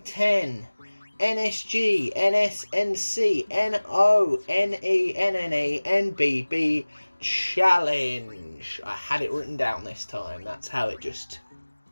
X NSGNSNCNONENNENBB challenge. I had it written down this time. That's how it just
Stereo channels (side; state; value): both; inverted; correlation -1.00